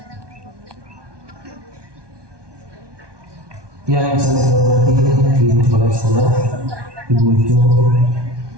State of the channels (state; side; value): late; left; 1.2 ms